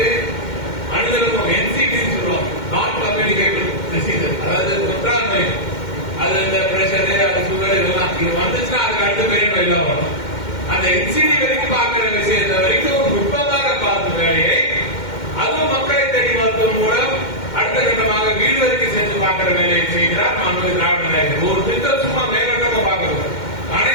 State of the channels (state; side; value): late; right; 2.1 ms